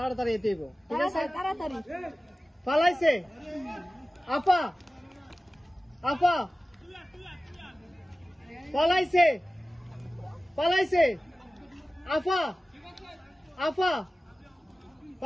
এতে ঠিক আছে তাড়াতাড়ি পালাইছে আপা আপা পালাইছে পালাইছে আপা আপা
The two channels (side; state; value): both; normal; correlation 0.96